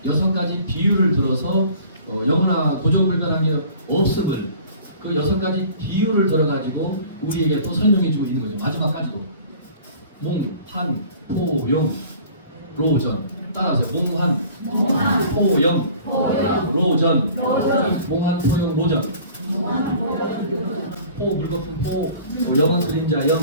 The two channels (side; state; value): both; inverted; correlation -0.47